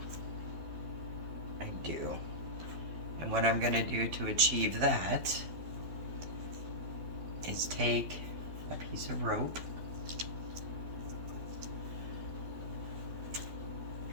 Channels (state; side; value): late; left; 12 ms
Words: I do. And what I'm going to do to achieve that is take a piece of rope